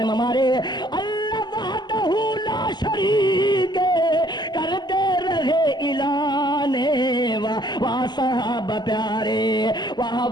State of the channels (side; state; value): right; late; 0.21 ms